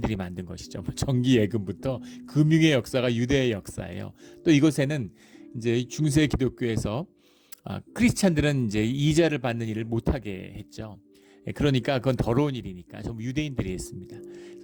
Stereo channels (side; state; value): both; identical; correlation 1.00